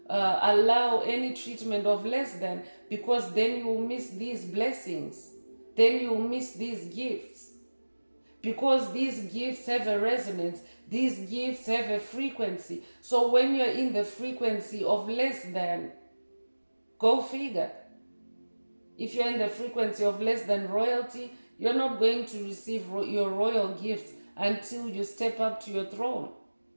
allow any treatment of less than, because then you will miss these blessings. Then you will miss these gifts. Because these gifts have a resonance. These gifts have a frequency. So when you're in the frequency of less than, go figure. If you're in the frequency of less than royalty, you're not going to receive your royal gifts until you step up to your throne.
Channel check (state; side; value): inverted; both; correlation -1.00